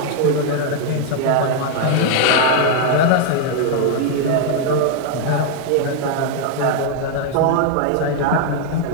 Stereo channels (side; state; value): both; different; correlation 0.00